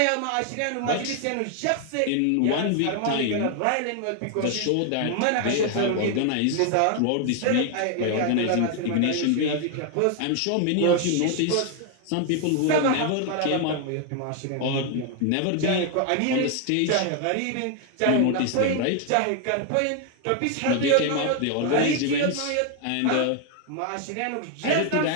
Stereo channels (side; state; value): both; different; correlation 0.01